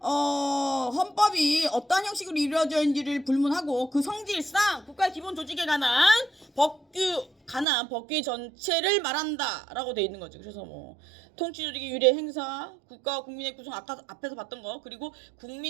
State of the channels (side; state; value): left; drops out; at 7.7 s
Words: 헌법이 어떠한 형식으로 이루어져 있는지를 불문하고 그 성질상 국가의 기본 조직에 관한 법규 전체를 말한다라고 돼 있는 거지. 그래서 통치조직의 유례 행사, 국가와 국민의 구성, 앞에서 봤던 거, 그리고